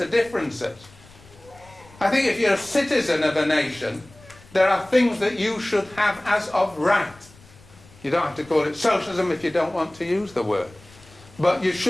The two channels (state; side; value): noise; left; rumble, 24 dB below the sound